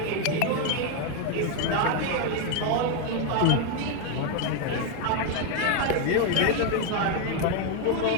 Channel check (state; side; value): different; both; correlation 0.01